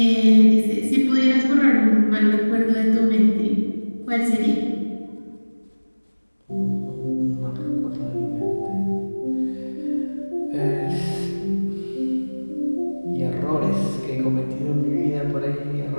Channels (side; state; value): both; inverted; correlation -1.00